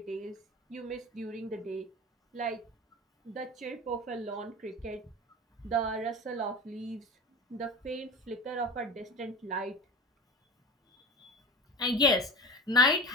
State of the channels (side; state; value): both; normal; correlation 0.31